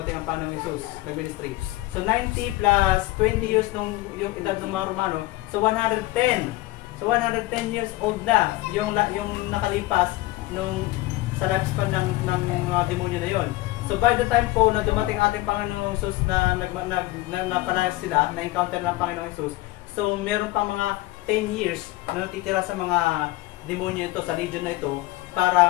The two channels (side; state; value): right; quieter; 18.8 dB